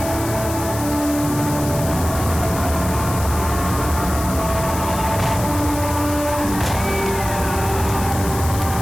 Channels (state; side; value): noise; left; hiss, 10 dB below the sound